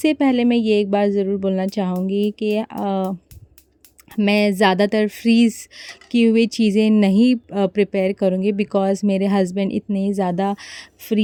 पहले मैं ये एक बात ज़रूर बोलना चाहूँगी कि मैं ज़्यादातर फ्रीज़ की हुई चीज़ें नहीं प्रिपेयर करूँगी, बिकॉज़ मेरे हस्बैंड इतने ज़्यादा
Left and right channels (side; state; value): both; identical; correlation 1.00